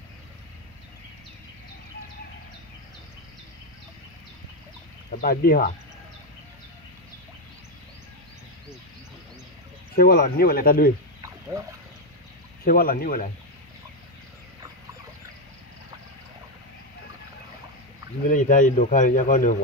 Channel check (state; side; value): normal; both; correlation 0.07